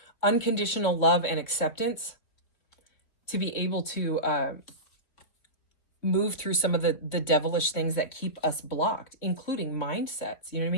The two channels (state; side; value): late; right; 3.6 ms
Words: unconditional love and acceptance to be able to move through some of the devilish things that keep us blocked, including mindsets, you know what I